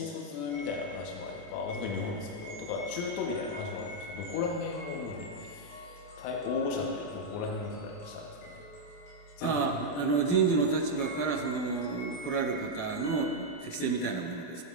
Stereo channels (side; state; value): right; late; 28 ms